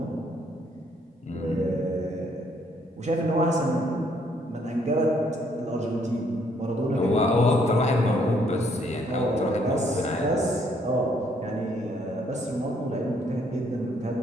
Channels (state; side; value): normal; both; correlation 0.68